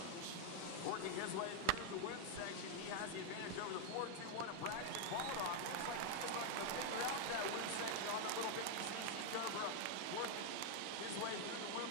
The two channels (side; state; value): both; different; correlation 0.00